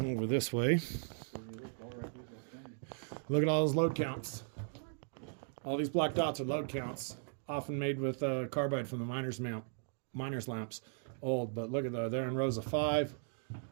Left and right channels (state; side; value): silent; left; 53 dB below the other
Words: over this way. Look at all those load counts. All these black dots are load counts, often made with carbide from the miner's lamps. Old, but look at that. They're in rows of 5.